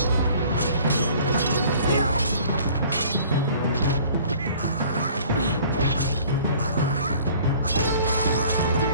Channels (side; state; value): both; inverted; correlation -0.51